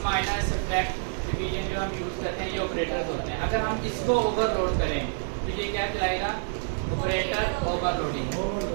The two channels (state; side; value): silent; left; digital silence